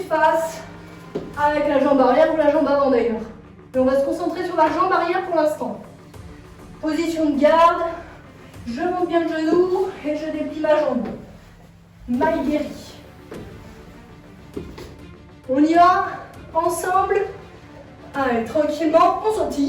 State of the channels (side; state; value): both; identical; correlation 1.00